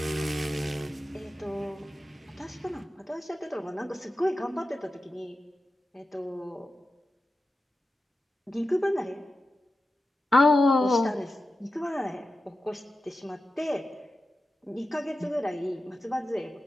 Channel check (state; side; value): normal; both; correlation 0.92